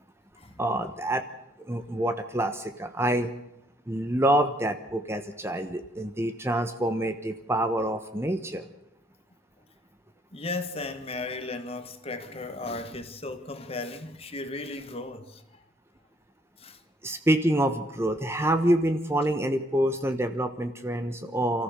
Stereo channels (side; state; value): both; normal; correlation 0.68